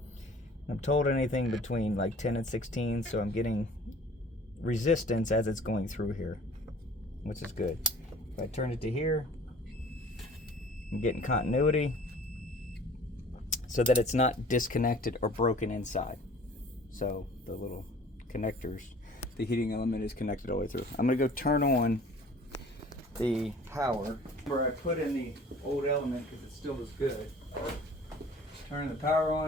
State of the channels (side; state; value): both; normal; correlation 0.49